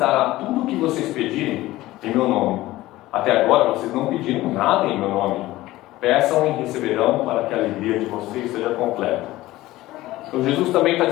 tudo o que vocês pedirem em meu nome. Até agora vocês não pediram nada em meu nome. Peçam e receberão, para que a alegria de vocês seja completa. Então Jesus também está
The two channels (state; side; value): quieter; right; 17.1 dB